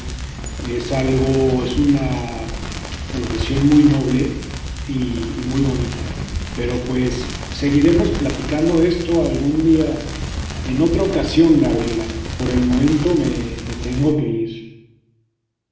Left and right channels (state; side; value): identical; both; correlation 1.00